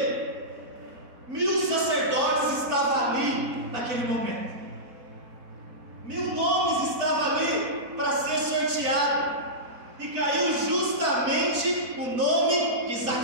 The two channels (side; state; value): left; late; 4.5 ms